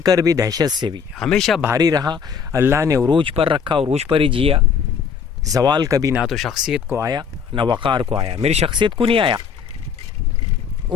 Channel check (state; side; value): quieter; right; 6.6 dB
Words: भी, दहशत से भी। हमेशा भारी रहा, अल्लाह ने उरूज पर रखा, उरूज पर ही जिया। जवाल कभी ना तो शख्सियत को आया ना वक़ार को आया। मेरी शख्सियत को नहीं आया,